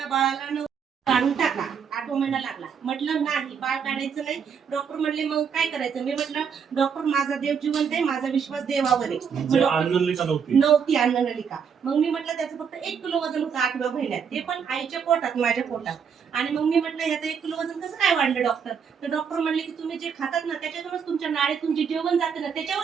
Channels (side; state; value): left; quieter; 6.9 dB